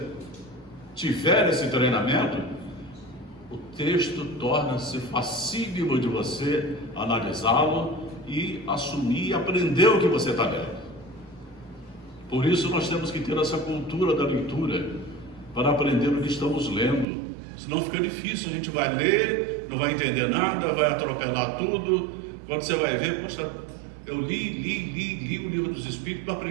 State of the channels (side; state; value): left; drops out; at 17.1 s